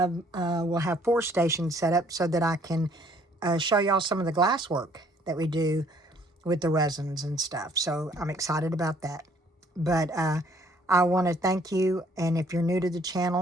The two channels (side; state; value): both; normal; correlation 0.61